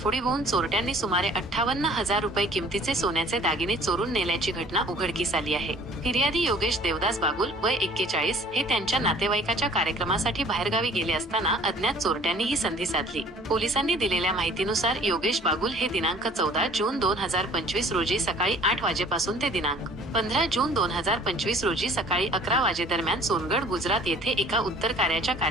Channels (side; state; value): both; normal; correlation 0.52